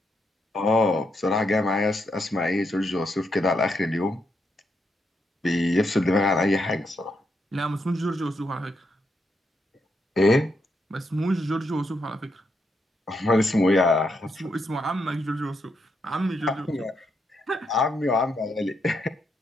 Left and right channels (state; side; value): normal; both; correlation 0.80